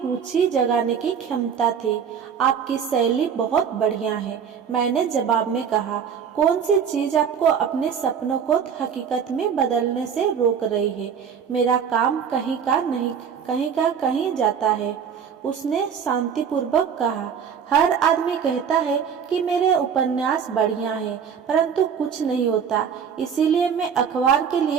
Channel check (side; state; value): left; quieter; 7.3 dB